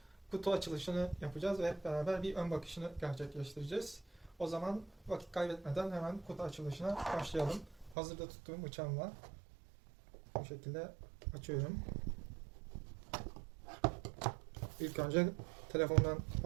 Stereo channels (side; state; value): left; drops out; at 8.0 s